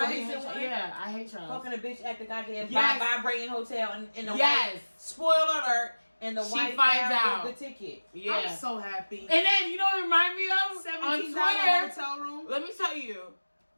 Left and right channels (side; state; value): both; inverted; correlation -1.00